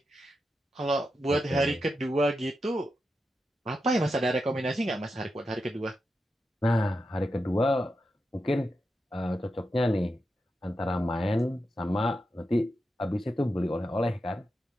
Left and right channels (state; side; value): normal; both; correlation 0.88